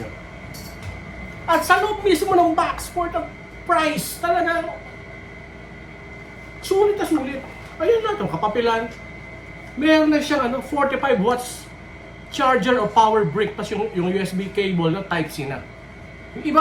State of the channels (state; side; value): identical; both; correlation 1.00